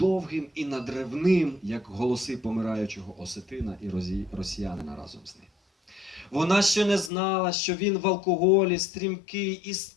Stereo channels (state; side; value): drops out; right; at 7.1 s